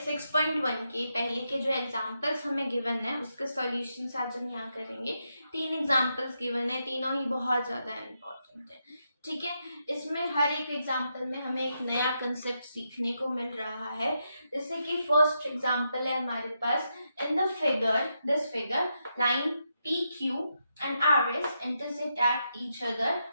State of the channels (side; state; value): both; inverted; correlation -0.83